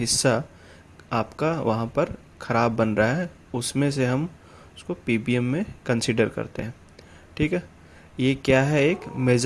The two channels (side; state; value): both; identical; correlation 1.00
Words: आपका वहाँ पर ख़राब बन रहा है, उसमें से हम उसको पीपीएम में कंसीडर करते हैं। ठीक है, ये क्या है, एक